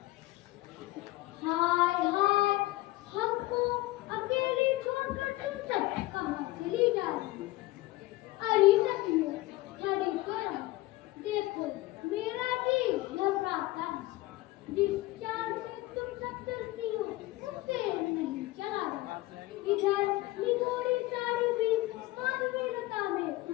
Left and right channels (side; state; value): right; quieter; 18.9 dB